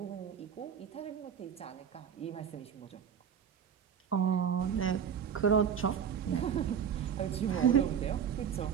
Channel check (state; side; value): quieter; left; 7.9 dB